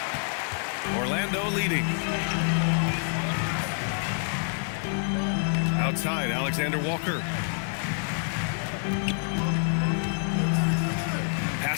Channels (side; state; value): right; silent; 60 dB below the other